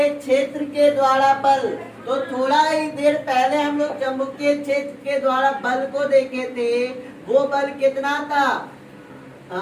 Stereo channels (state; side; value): identical; both; correlation 1.00